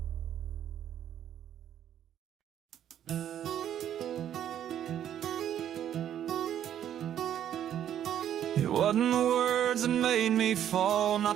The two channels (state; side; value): quieter; left; 10.4 dB